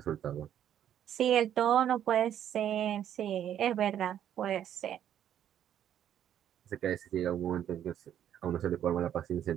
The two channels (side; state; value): left; quieter; 10.3 dB